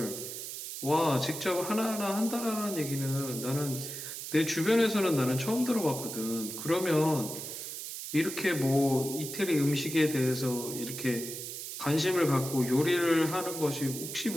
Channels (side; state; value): right; noise; hiss, 7 dB below the sound